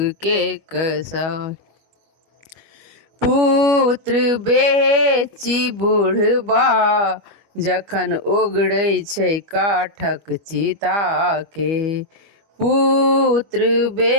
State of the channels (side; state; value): left; late; 25 ms